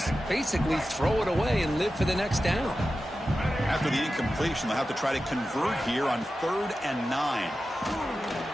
basically throw it away and live for the next down. After the incompletion, they'll have to try to convert here on 3rd and 9.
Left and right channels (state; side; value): normal; both; correlation 0.93